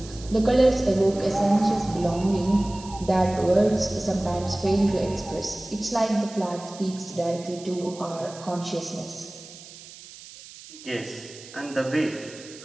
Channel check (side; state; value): right; noise; hiss, 17 dB below the sound